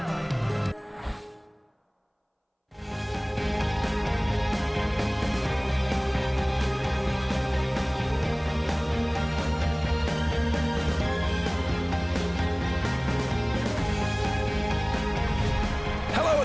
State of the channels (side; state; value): both; identical; correlation 1.00